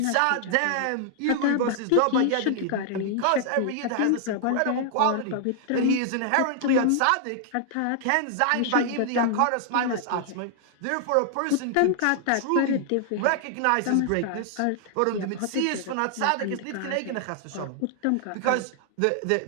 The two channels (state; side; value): different; both; correlation 0.00